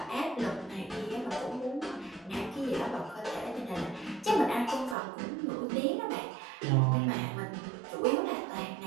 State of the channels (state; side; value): drops out; left; at 5.0 s